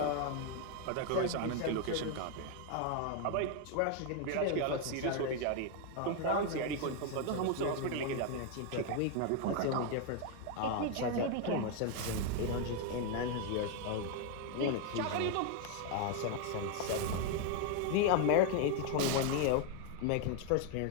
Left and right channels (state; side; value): different; both; correlation 0.01